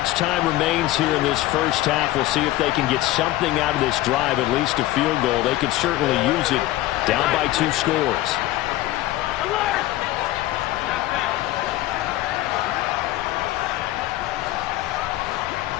time remains here in this first half. We'll see if they can get something out of this drive, at least a field goal. They could certainly use it down by 2 scores.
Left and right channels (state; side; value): quieter; right; 16.1 dB